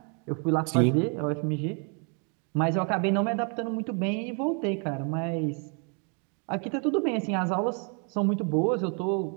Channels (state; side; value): quieter; left; 38.4 dB